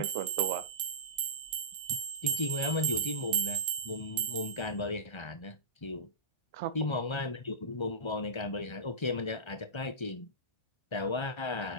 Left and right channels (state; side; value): late; right; 1.3 ms